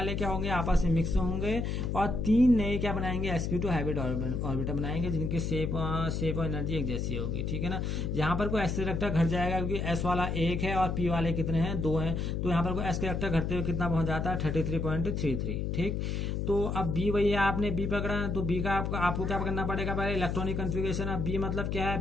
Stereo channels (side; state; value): left; noise; hum, 1 dB below the sound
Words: क्या होंगे, आपस में मिक्स होंगे और 3 नए क्या बनाएंगे, sp2 हाइब्रिड ऑर्बिटल बनाएंगे जिनकी शेप और एनर्जी एक जैसी होगी, ठीक है ना। यहाँ पर कोई s करेक्टर घट जाएगा क्योंकि s वाला 1 है और p वाले कितने हैं, 2 हैं। तो यहाँ पर कोई s करेक्टर घटते हुए कितना पहुंच जाता है, 33.33, ठीक। तो अब B वही है, आपने B पकड़ा तो B का आपको क्या करना पड़ेगा, पहले इलेक्ट्रॉनिक कन्फिगरेशन। अब B मतलब क्या